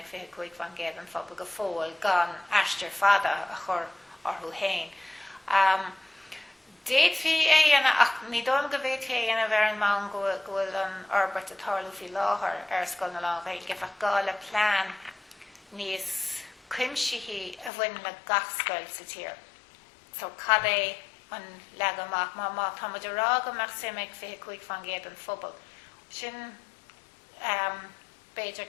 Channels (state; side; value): drops out; right; at 17.7 s